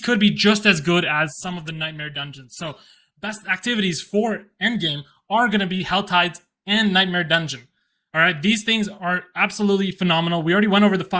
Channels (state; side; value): identical; both; correlation 1.00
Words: be just as good as some of the Nightmare Dungeons. So, best activities for endgame are going to be Hell Tides and Nightmare Dungeon. All right, these things are absolutely phenomenal. We already went over the